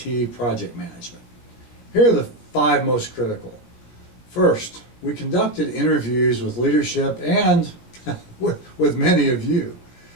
project management. Here are the 5 most critical. First, we conducted interviews with leadership and with many of you.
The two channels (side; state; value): right; late; 17 ms